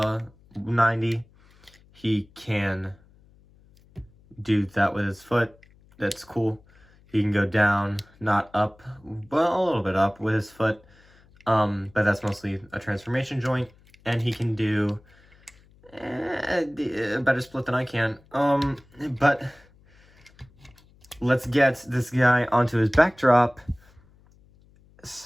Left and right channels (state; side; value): noise; left; hum, 29 dB below the sound